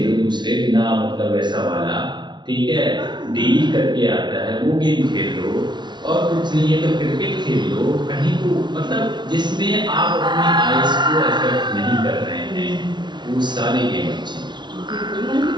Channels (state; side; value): late; left; 0.21 ms